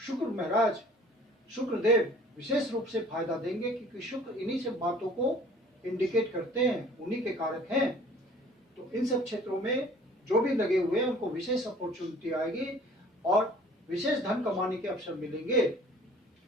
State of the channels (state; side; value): normal; both; correlation 0.51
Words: महाराज शुक्रदेव विशेष रूप से फायदा देंगे, क्योंकि शुक्र इन्हीं सब बातों को इंडिकेट करते हैं, उन्हीं के कारक हैं। तो इन सब क्षेत्रों में जो भी लगे हुए हैं उनको विशेष अपॉर्चुनिटी आएगी और विशेष धन कमाने के अवसर मिलेंगे।